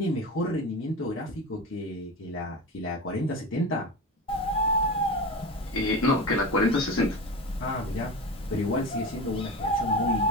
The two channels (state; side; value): normal; both; correlation 0.26